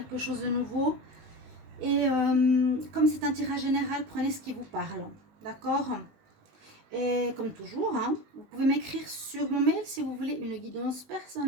chose de nouveau. Et comme c'est un tirage général, prenez ce qui vous parle, d'accord? Et comme toujours, hein, vous pouvez m'écrire sur mon mail si vous voulez une guidance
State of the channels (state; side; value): late; left; 19 ms